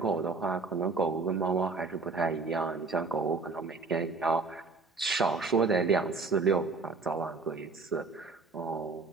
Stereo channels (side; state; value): left; quieter; 4.1 dB